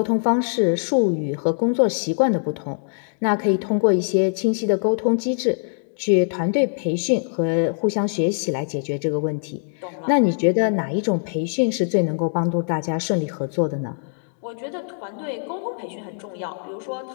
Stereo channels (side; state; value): right; silent; digital silence